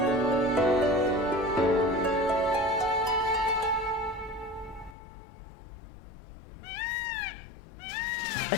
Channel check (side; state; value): right; drops out; at 5.0 s